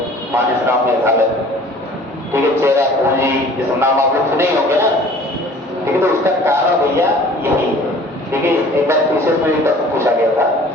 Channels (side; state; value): both; normal; correlation 0.49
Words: मानसराम मेघालय, ठीक है, चेरापूंजी, जिस नाम आप लोग सुने होंगे ना, ठीक है, तो उसका कारण भैया यही है। ठीक है, एक बार विशेष में प्रश्न पूछा गया था